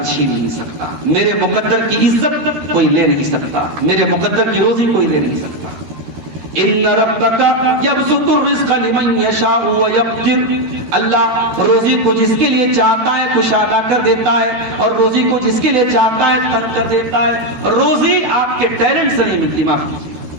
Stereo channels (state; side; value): late; left; 13 ms